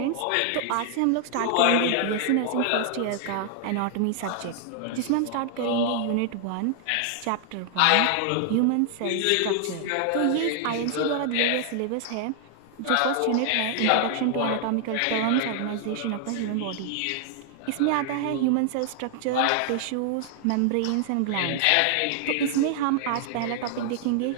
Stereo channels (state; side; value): different; both; correlation 0.00